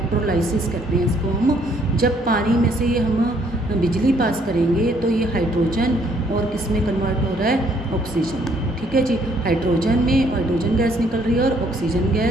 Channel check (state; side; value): normal; both; correlation 0.66